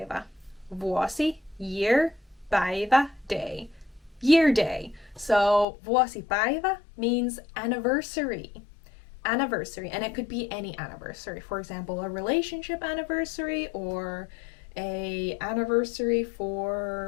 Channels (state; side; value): drops out; right; at 5.7 s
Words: Vuosi, year, päivä, day. Year day. So vuosipäivä means anniversary. Anniversary, and it could be any anniversary. For example, a relationship anniversary or a anniversary